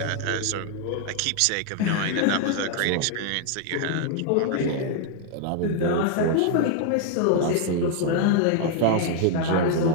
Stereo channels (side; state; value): both; different; correlation 0.00